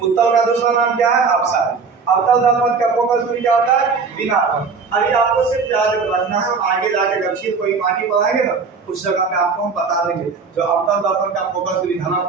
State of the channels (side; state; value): left; quieter; 5.0 dB